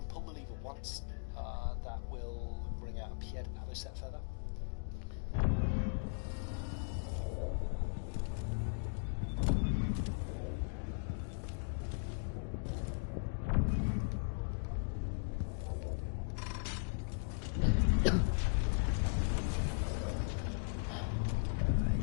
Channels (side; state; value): right; silent; digital silence